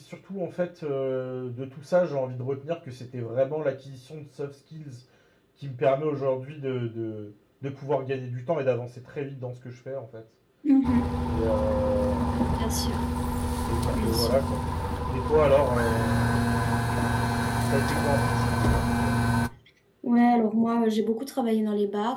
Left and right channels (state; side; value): identical; both; correlation 1.00